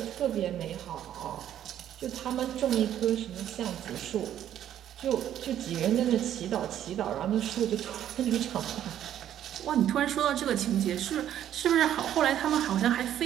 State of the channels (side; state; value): left; quieter; 11.0 dB